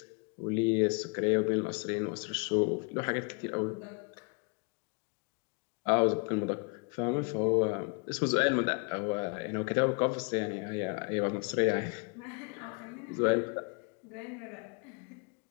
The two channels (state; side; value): quieter; right; 35.2 dB